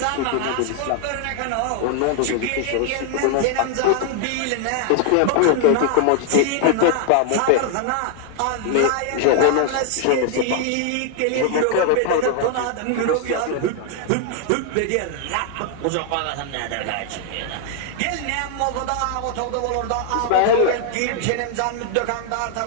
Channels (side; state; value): both; different; correlation 0.00